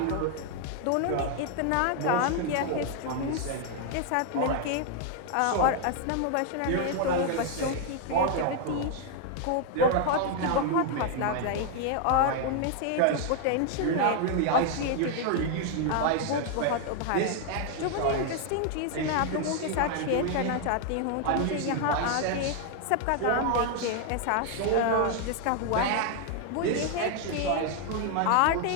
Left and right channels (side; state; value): both; different; correlation 0.00